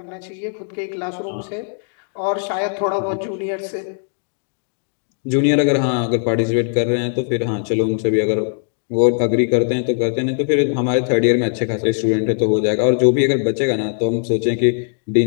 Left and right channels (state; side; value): silent; right; digital silence